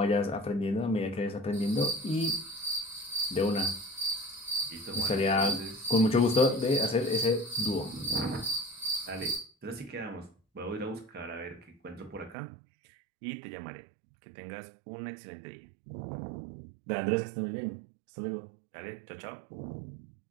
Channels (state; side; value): drops out; left; at 12.4 s